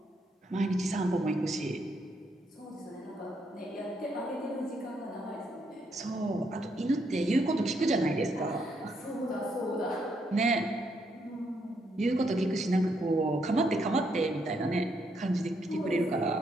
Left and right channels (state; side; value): normal; both; correlation 0.75